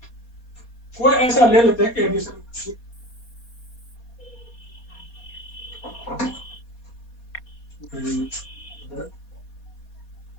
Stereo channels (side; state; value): right; late; 4.2 ms